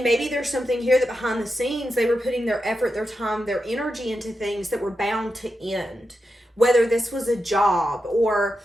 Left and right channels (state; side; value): normal; both; correlation 0.88